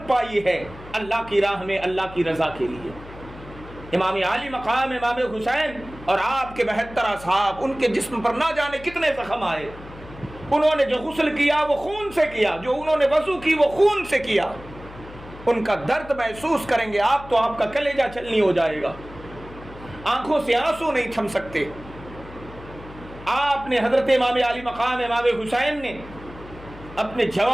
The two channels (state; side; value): noise; left; hum, 17 dB below the sound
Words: پائی ہے اللہ کی راہ میں اللہ کی رضا کے لیے۔ امام علی مقام امام حسین اور آپ کے 72 اصحاب، ان کے جسم پر نہ جانے کتنے زخم آئے. انہوں نے جو غسل کیا وہ خون سے کیا، جو انہوں نے وضو کی وہ خون سے کیا. ان کا درد محسوس کریں گے آپ تو آپ کا کلیجہ چھلنی ہو جائے گا، آنکھوں سے آنسو نہیں تھم سکتے. آپ نے حضرت امام علی مقام امام حسین نے اپنے